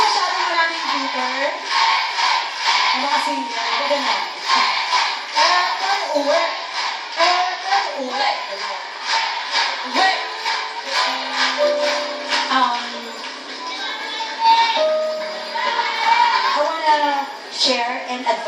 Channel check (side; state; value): both; identical; correlation 1.00